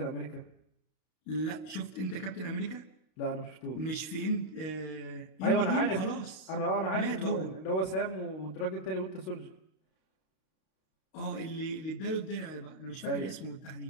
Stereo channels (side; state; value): right; late; 32 ms